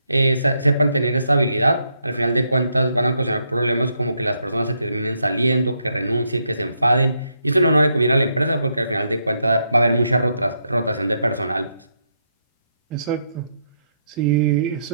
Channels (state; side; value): inverted; both; correlation -0.78